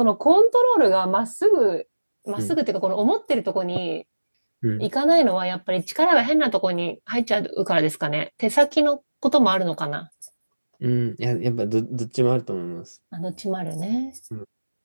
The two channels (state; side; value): inverted; both; correlation -1.00